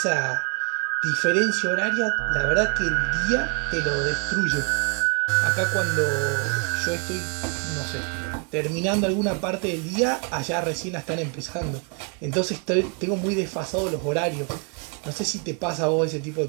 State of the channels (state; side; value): quieter; left; 37.9 dB